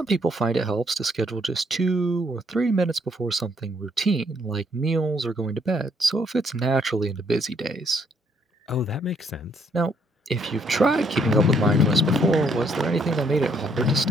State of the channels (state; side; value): normal; both; correlation 0.69